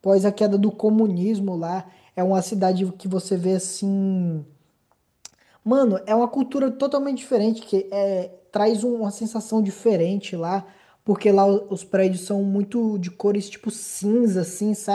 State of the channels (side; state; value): both; identical; correlation 1.00